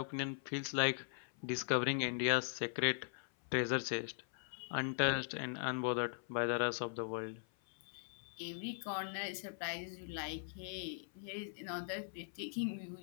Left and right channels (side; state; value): right; silent; 51 dB below the other